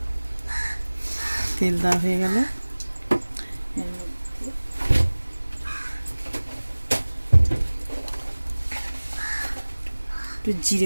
তেল দেওয়া হয়ে গেল, একটু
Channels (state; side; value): inverted; both; correlation -1.00